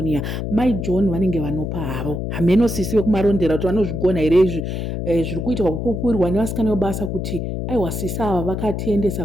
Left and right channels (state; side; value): noise; left; hum, 3 dB below the sound